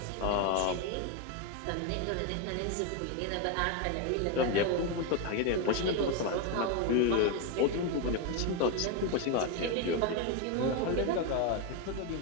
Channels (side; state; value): both; different; correlation 0.02